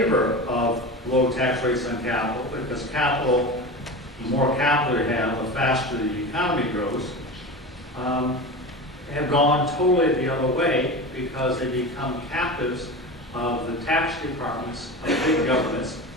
of low tax rates on capital, because capital, the more capital you have, the faster the economy grows, have gone totally the other way because they become captives of the tax departments of big governments,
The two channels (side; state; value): both; normal; correlation 0.28